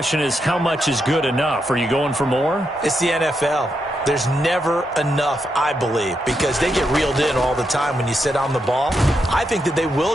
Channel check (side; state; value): both; normal; correlation 0.83